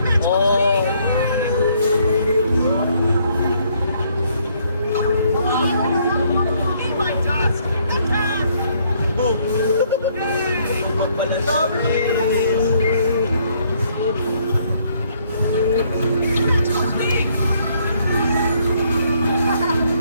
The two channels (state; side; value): inverted; both; correlation -0.67